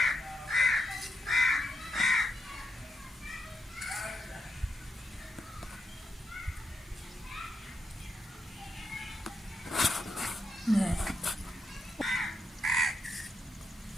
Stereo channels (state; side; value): normal; both; correlation 0.83